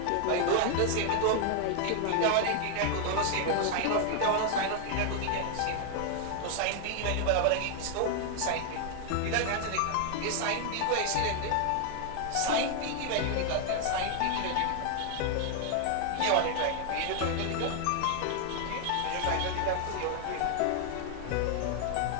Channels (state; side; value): different; both; correlation 0.00